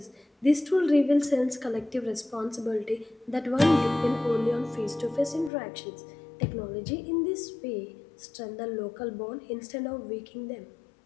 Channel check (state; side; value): drops out; right; at 5.5 s